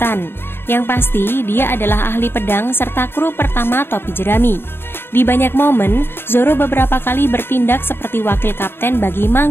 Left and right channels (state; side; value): late; right; 0.11 ms